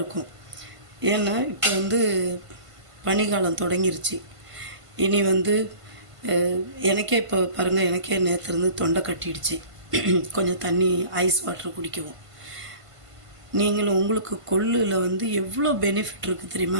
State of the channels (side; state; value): left; late; 1.5 ms